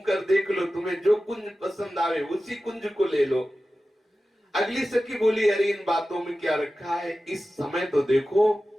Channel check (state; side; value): normal; both; correlation 0.94